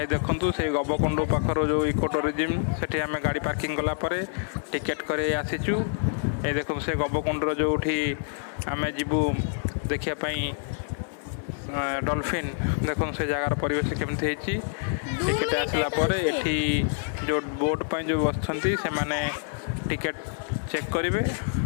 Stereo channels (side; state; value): right; silent; 60 dB below the other